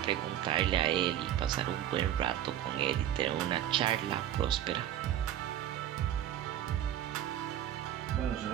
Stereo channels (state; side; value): quieter; left; 11.4 dB